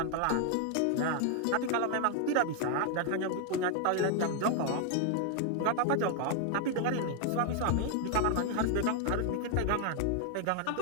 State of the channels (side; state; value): both; different; correlation 0.00